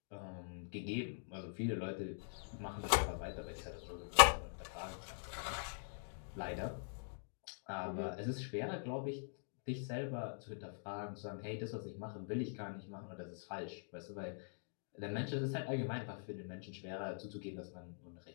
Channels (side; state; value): right; silent; digital silence